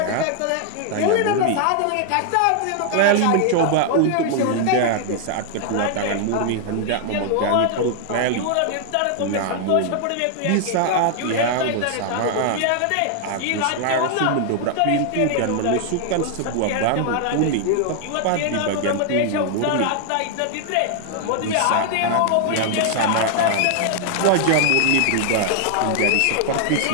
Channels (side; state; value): both; different; correlation 0.00